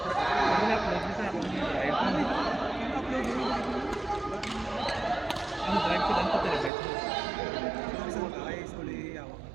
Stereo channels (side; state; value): left; drops out; at 6.7 s